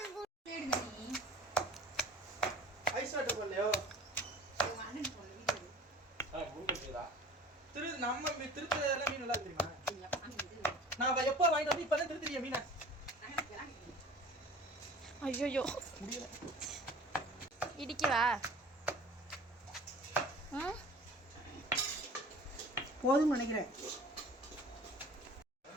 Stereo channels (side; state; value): both; normal; correlation 0.44